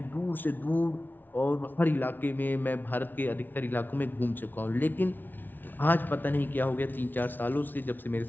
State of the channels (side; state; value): right; late; 0.090 ms